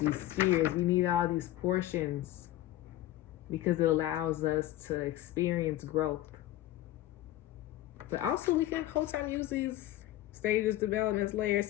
spheres. We need all these portions because it allows us to experience growth. But also we can whole time use these stages, developments, layers,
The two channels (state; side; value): quieter; right; 14.8 dB